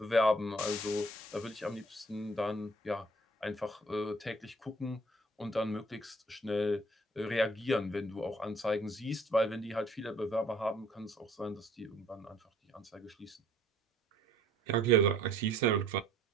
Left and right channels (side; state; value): both; normal; correlation 0.57